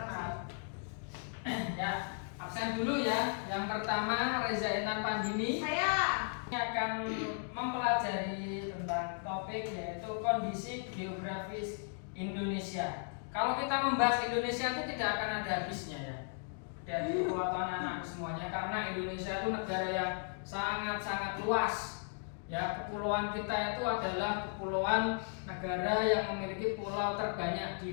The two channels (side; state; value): right; silent; 54 dB below the other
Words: kasih. Ya, absen dulu ya. Yang pertama Reza Intan Pandini. Saya Ini akan mempelajari tentang topik yaitu kondisi geografis Indonesia. Kalau kita membahas Indonesia itu tidak akan ada habisnya ya. Dari kekuatan anak semuanya karena Indonesia itu negara yang sangat-sangat luas. Ya, kepulauan kita itu adalah kepulauan negara yang memiliki pulau terbanyak